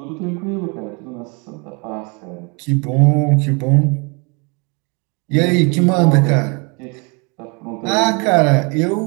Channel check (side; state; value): left; quieter; 31.6 dB